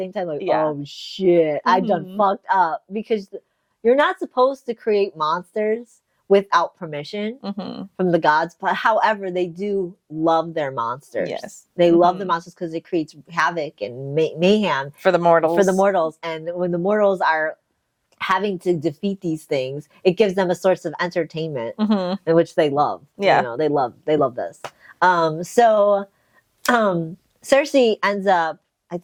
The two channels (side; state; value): both; identical; correlation 1.00